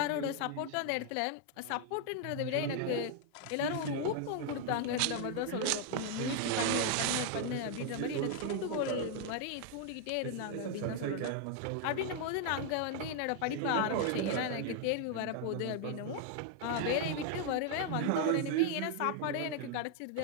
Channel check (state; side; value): different; both; correlation 0.00